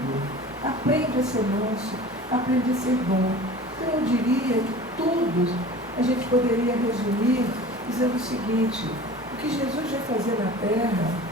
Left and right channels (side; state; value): both; normal; correlation 0.40